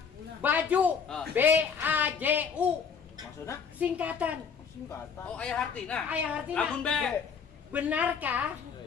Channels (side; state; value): right; quieter; 6.3 dB